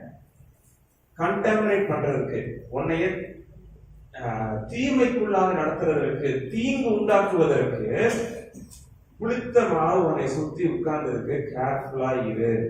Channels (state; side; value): identical; both; correlation 1.00